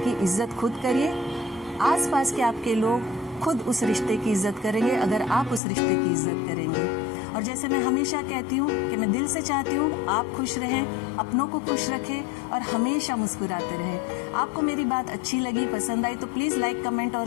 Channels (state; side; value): drops out; right; at 5.6 s